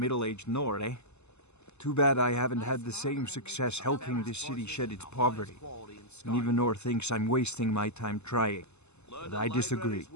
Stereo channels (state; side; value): late; right; 0.81 ms